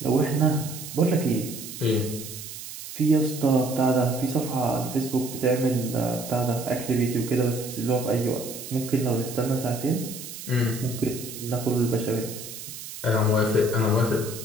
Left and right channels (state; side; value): noise; right; hiss, 11 dB below the sound